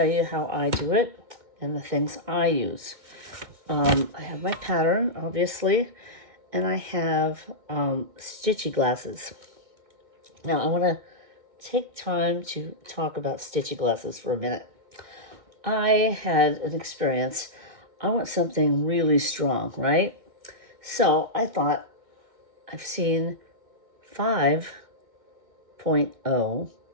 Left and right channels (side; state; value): left; late; 2.1 ms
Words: you how I do it and the things I use. I have my pattern, obviously, and I have Stitchy glasses. Now, I want to take time to talk about Stitchy glasses for a minute. I had an experience. I want something really strong, right? So I thought, I've seen 5.0